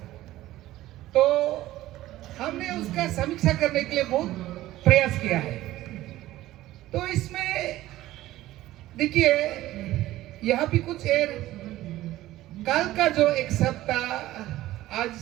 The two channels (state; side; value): quieter; left; 15.6 dB